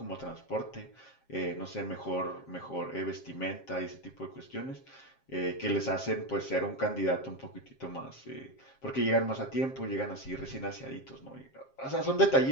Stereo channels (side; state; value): right; late; 7.5 ms